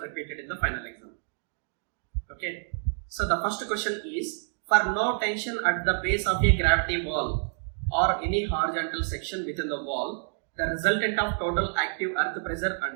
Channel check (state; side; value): silent; left; digital silence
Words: in the final exam. Okay. So the first question is, for no tension at the base of a gravity wall or any horizontal section within the wall, the resultant of total active earth pressure